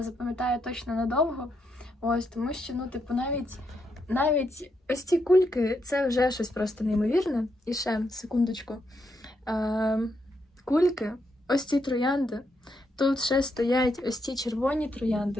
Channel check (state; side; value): normal; both; correlation 0.80